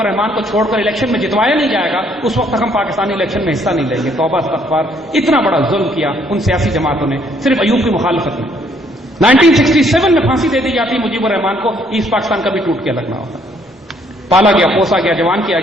الرحمان کو چھوڑ کر الیکشن میں جتوایا نہیں جائے گا اس وقت تک ہم پاکستانی الیکشن میں حصہ نہیں لیں گے. توبہ استغفار، اتنا بڑا ظلم کیا ان سیاسی جماعتوں نے صرف ایوب کی مخالفت میں. 1967 میں پھانسی دے دی جاتی مجیب الرحمان کو، ایسٹ پاکستان کا بھی ٹوٹ کے لگنا ہوتا. پالا گیا، پوسا گیا، جوان کیا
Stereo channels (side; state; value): both; normal; correlation 0.66